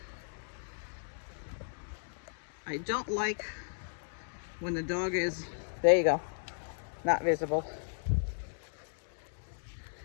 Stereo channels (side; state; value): right; silent; 54 dB below the other